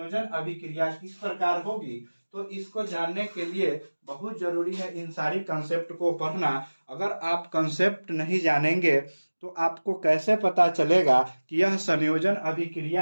अभिक्रिया किस प्रकार होगी? तो इसको जानने के लिए बहुत जरूरी है इन सारी कंसेप्ट को पढ़ना। अगर आप कंसेप्ट नहीं जानेंगे तो आपको कैसे पता चलेगा कि यह संयोजन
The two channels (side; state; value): both; inverted; correlation -1.00